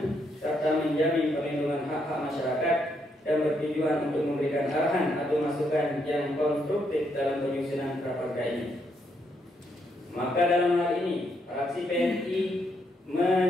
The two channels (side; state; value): both; normal; correlation 0.76